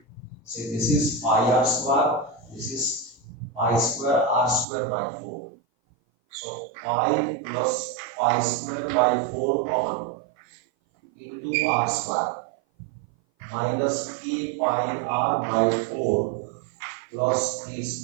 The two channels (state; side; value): drops out; left; at 4.7 s